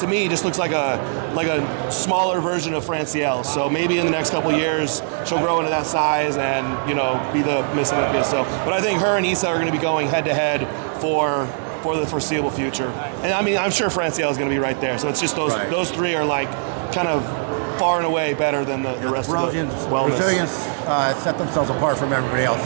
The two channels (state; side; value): silent; left; 62 dB below the other